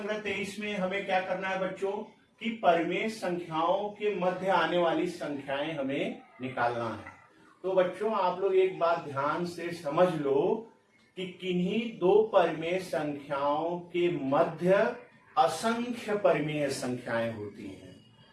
23 में हमें क्या करना है बच्चों कि परिमेय संख्याओं के मध्य आने वाली संख्याएं हमें निकालना है। तो बच्चों, आप लोग एक बात ध्यान से समझ लो कि किन्हीं दो परिमेय संख्याओं के मध्य असंख्य परिमेय संख्याएं होती हैं।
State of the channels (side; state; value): both; identical; correlation 1.00